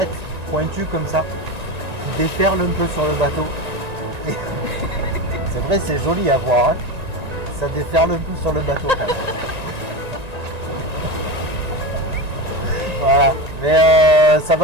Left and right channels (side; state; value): left; late; 1.9 ms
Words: pointues comme ça, qui déferlent un peu sur le bateau. Et c'est vrai, c'est joli à voir. Hein. Ça déferle un peu sur le bateau. Quand même. Voilà, mais ça